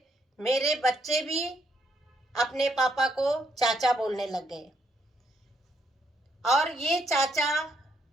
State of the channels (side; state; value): both; normal; correlation 0.74